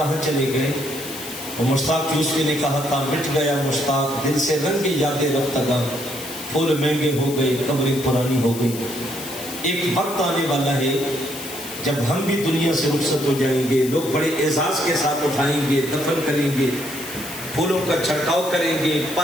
چلے گئے؟ وہ مشتاق یوسفی نے کہا تھا، مٹ گیا مشتاق دل سے رنگی یادیں رفتگاں، پھول مہنگے ہو گئے قبریں پرانی ہو گئی۔ ایک وقت آنے والا ہے جب ہم بھی دنیا سے رخصت ہو جائیں گے، لوگ بڑے اعزاز کے ساتھ اٹھائیں گے، دفن کریں گے، پھولوں کا چھڑکاؤ کریں گے،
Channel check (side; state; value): left; noise; hiss, 11 dB below the sound